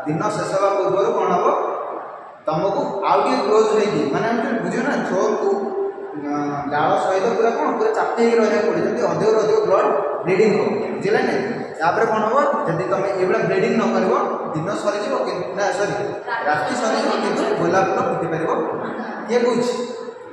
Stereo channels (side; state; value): both; identical; correlation 1.00